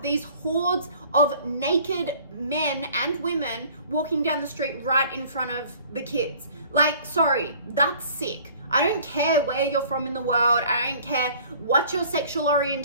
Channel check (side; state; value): both; inverted; correlation -0.51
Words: these hordes of naked men and women walking down the street right in front of the kids. Like, sorry, that's sick. I don't care where you're from in the world. I don't care what your sexual